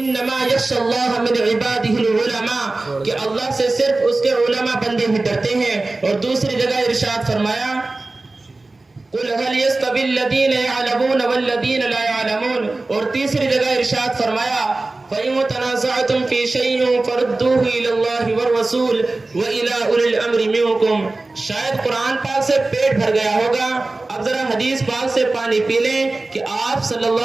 यख्शल्लाह मिन इबादिहिल उलमा, कि अल्लाह से सिर्फ उसके उलमा बंदे ही डरते हैं। और दूसरी जगह इरशाद फरमाया, कुल हल यस्तविल लदीन यअलमून वल्लदीन ला यअलमून। और तीसरी जगह इरशाद फरमाया, फ़इन तनाज़अतुम फ़ी शैइन फरुद्दूहु इलल्लाहि वर रसूल व इला उलिल अम्रि मिनकुम। शायद कुरान पाक से पेट भर गया होगा, अब जरा हदीस पाक से पानी पी लें कि आप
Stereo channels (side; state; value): left; quieter; 3.2 dB